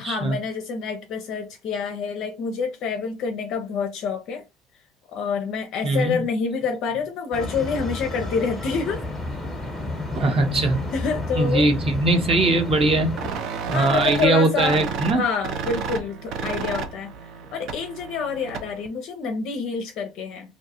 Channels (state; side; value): normal; both; correlation 0.55